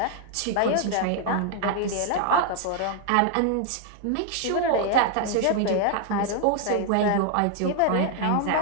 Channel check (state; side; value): different; both; correlation 0.00